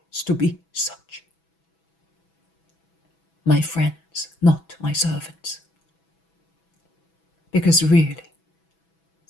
to be such. My friends, not my servants. Because really,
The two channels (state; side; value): late; right; 6.1 ms